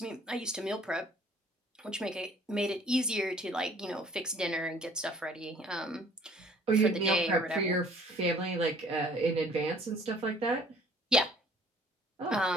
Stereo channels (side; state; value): both; normal; correlation 0.55